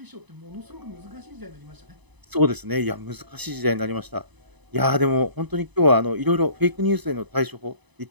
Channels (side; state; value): left; late; 1.0 ms